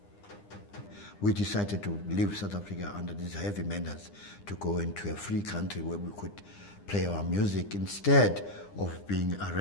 We decided to leave South Africa under these heavy menace to go into a free country where we could play our music instead of being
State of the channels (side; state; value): right; late; 9.9 ms